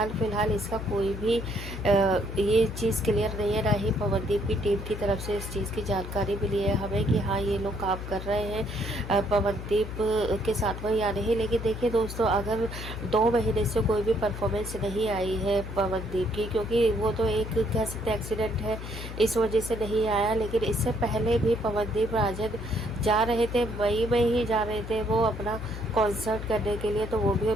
फिलहाल इसका कोई भी ये चीज़ क्लियर नहीं है, ना ही पवनदीप की टीम की तरफ से इस चीज़ की जानकारी मिली है हमें कि हाँ, ये लोग काम कर रहे हैं पवनदीप के साथ में या नहीं। लेकिन देखिए दोस्तों, अगर 2 महीने से कोई भी परफॉर्मेंस नहीं आई है पवनदीप की, क्योंकि वो तो एक कह सकते एक्सीडेंट है, इस वजह से नहीं आया। लेकिन इससे पहले भी पवनदीप राजन जा रहे थे, मई में ही जा रहे थे वो अपना कॉन्सर्ट करने के लिए, तो वो भी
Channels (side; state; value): left; noise; hum, 8 dB below the sound